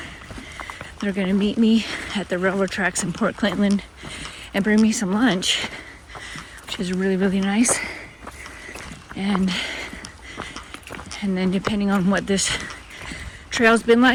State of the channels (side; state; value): both; identical; correlation 1.00